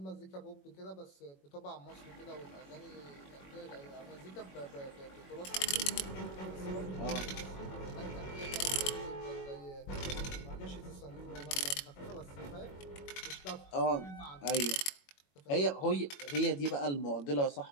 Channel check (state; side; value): late; right; 21 ms